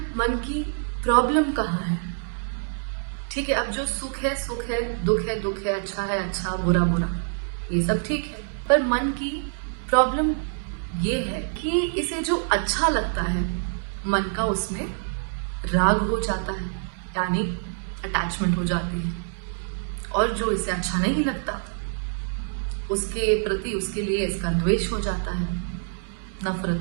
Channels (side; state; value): left; silent; 61 dB below the other